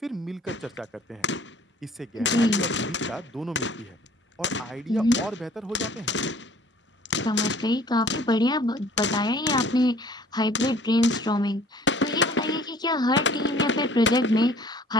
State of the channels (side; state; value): both; normal; correlation 0.53